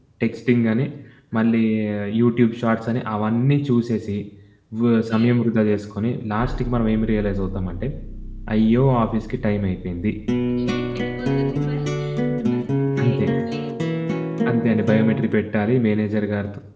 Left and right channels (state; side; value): identical; both; correlation 1.00